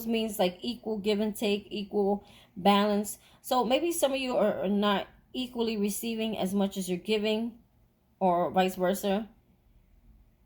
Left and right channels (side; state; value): both; identical; correlation 1.00